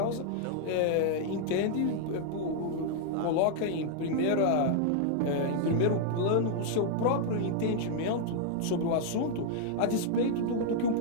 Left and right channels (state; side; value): different; both; correlation -0.01